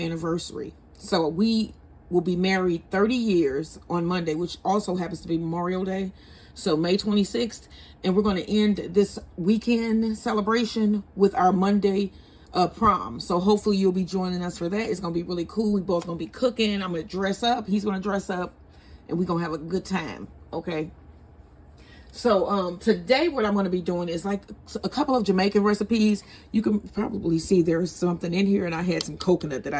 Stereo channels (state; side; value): identical; both; correlation 1.00